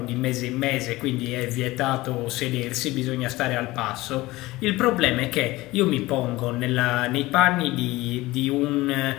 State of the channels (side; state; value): right; quieter; 19.2 dB